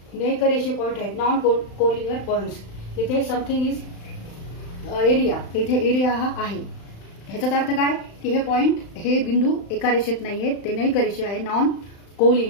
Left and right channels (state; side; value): late; right; 35 ms